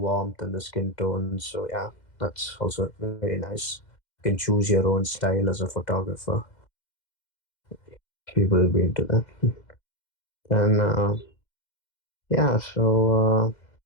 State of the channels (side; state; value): right; late; 2.1 ms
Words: and the skin tones. So yeah, that's also very nice. You can choose your own style as a photographer. People will be into that. And yeah, so